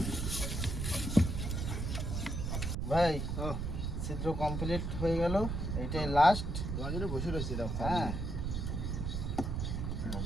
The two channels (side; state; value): right; noise; rumble, 2 dB below the sound